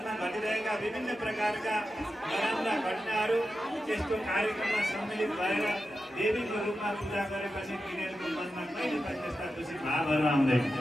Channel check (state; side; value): normal; both; correlation 0.91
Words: घटिरहेका विभिन्न प्रकारका नराम्रा घटनाहरू त्यस्तो कार्यक्रममा सम्मिलित भएर देवीको रूपमा पूजा गरेपछि तिनीहरूको मनमा कहिले पनि त्यस्ता दूषित भावहरू आउँदैन।